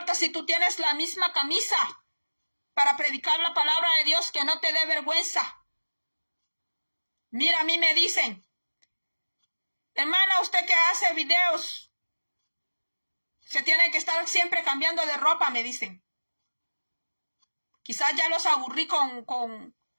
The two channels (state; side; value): inverted; both; correlation -1.00